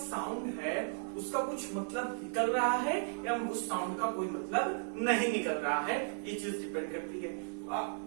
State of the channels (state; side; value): silent; left; digital silence